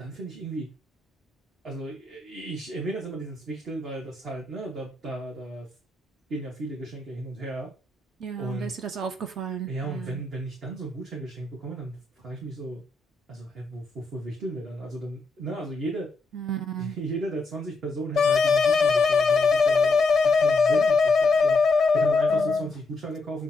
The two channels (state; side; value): quieter; right; 3.3 dB